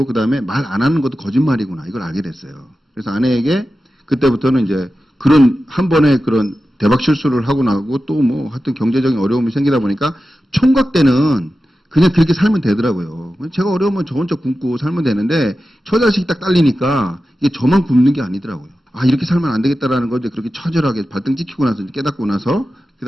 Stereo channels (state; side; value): normal; both; correlation 0.93